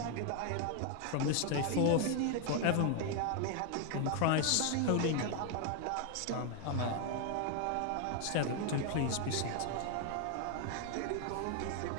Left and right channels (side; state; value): both; different; correlation 0.01